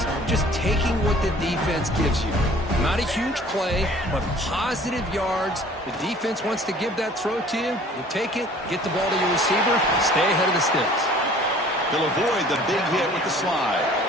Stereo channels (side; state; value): both; normal; correlation 0.51